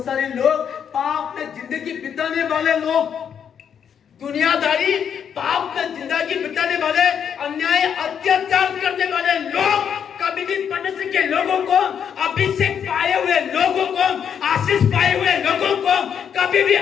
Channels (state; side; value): quieter; right; 8.0 dB